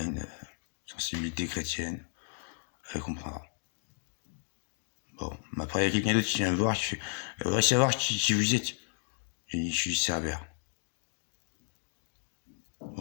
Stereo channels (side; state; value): right; silent; digital silence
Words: une sensibilité chrétienne, elle comprendra. Bon, après, il y a quelqu'un d'autre qui vient me voir, qui fait, elle voudrait savoir qui vous êtes. J'ai dit, je suis Cerbère.